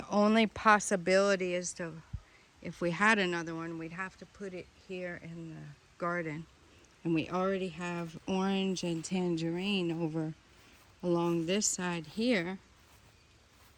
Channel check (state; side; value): identical; both; correlation 1.00